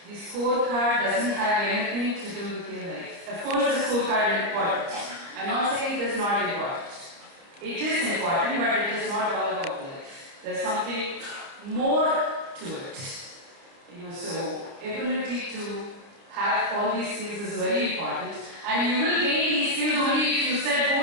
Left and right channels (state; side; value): late; left; 30 ms